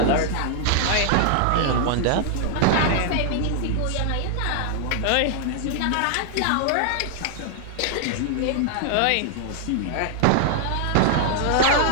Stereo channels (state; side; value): different; both; correlation 0.00